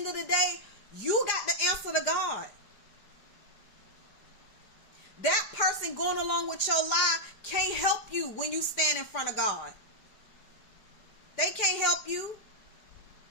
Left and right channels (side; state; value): right; late; 4.9 ms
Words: of the day, you got the answer to God. That person going along with your lie can't help you when you stand in front of God. They can't help you.